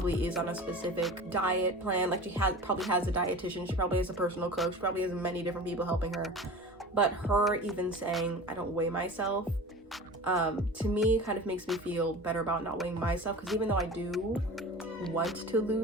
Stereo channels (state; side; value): normal; both; correlation 0.36